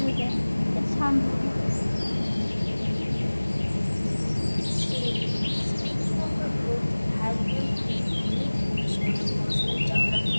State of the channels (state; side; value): inverted; both; correlation -1.00